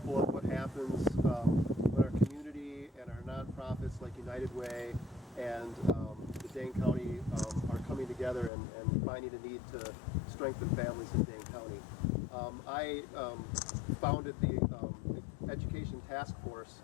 of what happens when our community and our nonprofits like United Way and the Dane County are coming together and finding a need to strengthen families in Dane County. I founded the Education Task Force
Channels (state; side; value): drops out; right; at 8.5 s